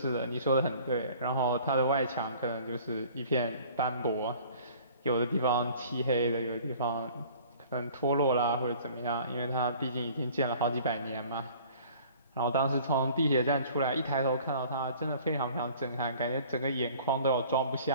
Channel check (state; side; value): inverted; both; correlation -0.50